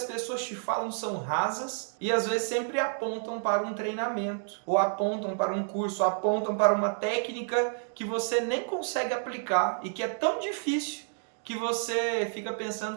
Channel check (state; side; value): silent; left; digital silence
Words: pessoas te falam são rasas e às vezes sempre apontam para um treinamento, ou apontam para um curso, ou apontam para uma técnica que você nem consegue aplicar e que é tão difícil que você fica